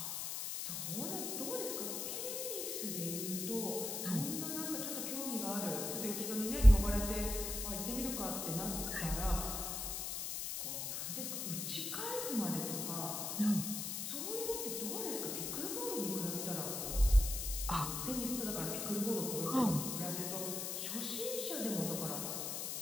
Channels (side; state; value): left; noise; hiss, 3 dB below the sound